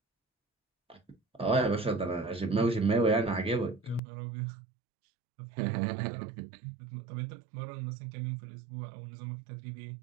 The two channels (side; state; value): left; drops out; at 4.0 s